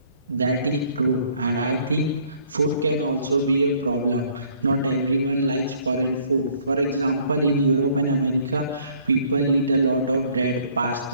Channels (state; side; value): inverted; both; correlation -0.60